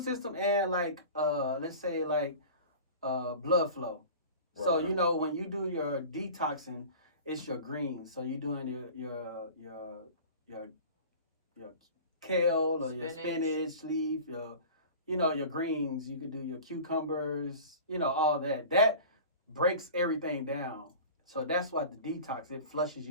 system and like let's say like blood flow. So Right. you know when you do your detoxing, it's your greens. So you're doing your your kale or your Spinach. spinach leaf, your greens. You could do your cucumbers, all that. That breaks everything down. So that's what the detox, it flushes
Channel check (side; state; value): both; inverted; correlation -0.38